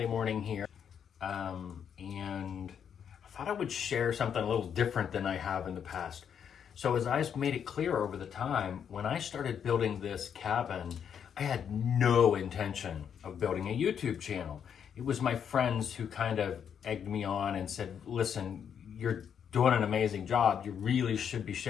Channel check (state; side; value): quieter; right; 8.0 dB